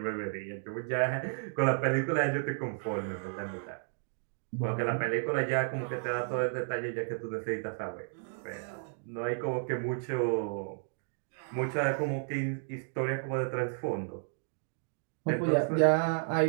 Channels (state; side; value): silent; left; digital silence